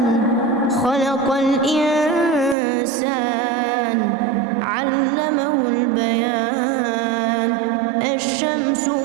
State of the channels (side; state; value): left; drops out; at 2.6 s